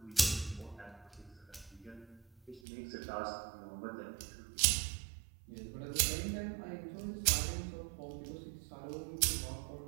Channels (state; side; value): drops out; left; at 2.6 s